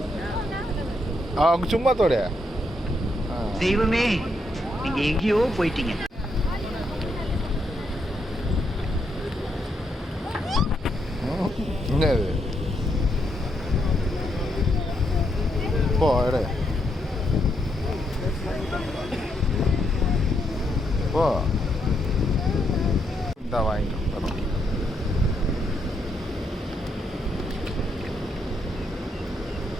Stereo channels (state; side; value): normal; both; correlation 0.78